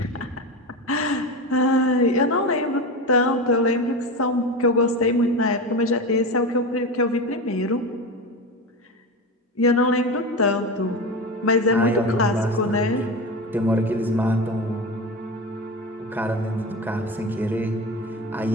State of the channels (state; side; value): normal; both; correlation 0.23